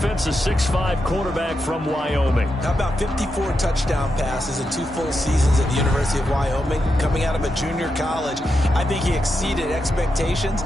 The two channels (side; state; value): both; normal; correlation 0.86